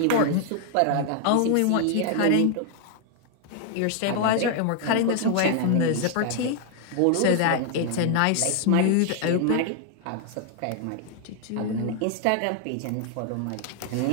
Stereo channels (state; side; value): different; both; correlation 0.00